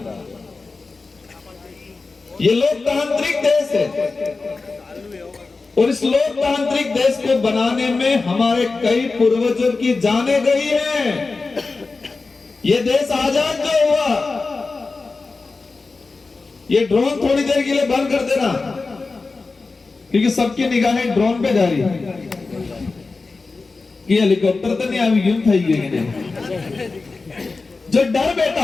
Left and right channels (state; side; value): quieter; right; 3.9 dB